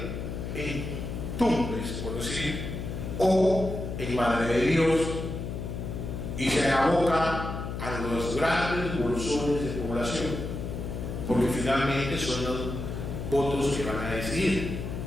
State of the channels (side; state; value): left; noise; hum, 5 dB below the sound